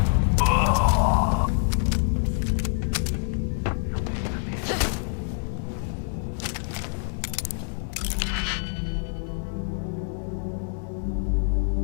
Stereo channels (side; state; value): right; silent; 61 dB below the other